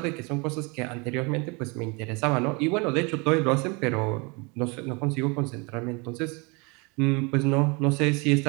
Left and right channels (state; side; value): quieter; left; 29.3 dB